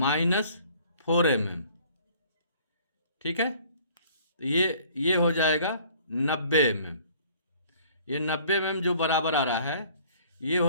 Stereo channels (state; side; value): inverted; both; correlation -0.55